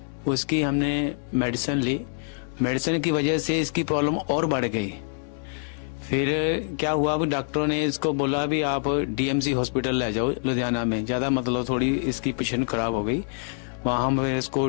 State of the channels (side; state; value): right; silent; digital silence